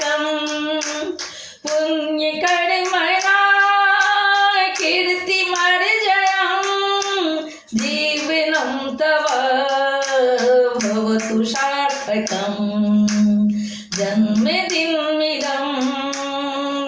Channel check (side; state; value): both; identical; correlation 1.00